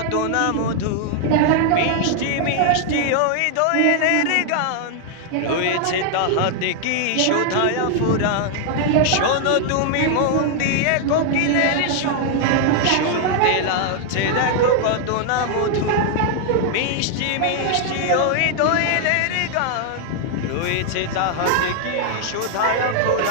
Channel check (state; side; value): different; both; correlation 0.00